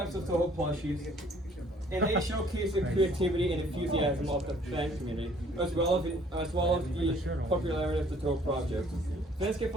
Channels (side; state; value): both; normal; correlation 0.59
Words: of Toho plushies, and they showcase the creativity and enthusiasm of the fan community, as well as the popularity of the Toho project. Fans can